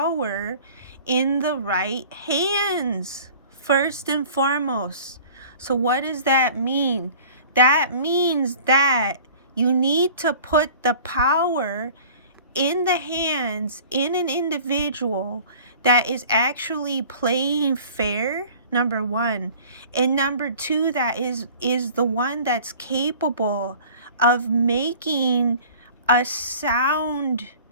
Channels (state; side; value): inverted; both; correlation -0.46